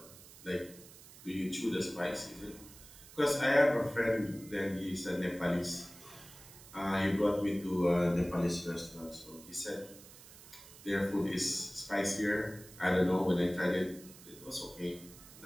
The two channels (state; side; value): noise; right; hiss, 19 dB below the sound